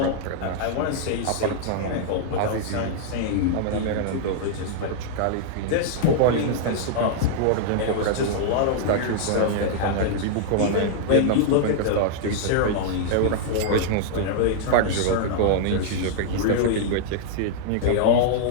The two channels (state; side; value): different; both; correlation -0.01